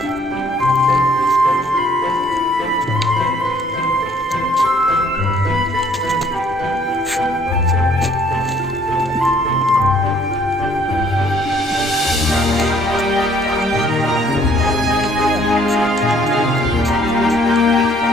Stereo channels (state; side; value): normal; both; correlation 0.62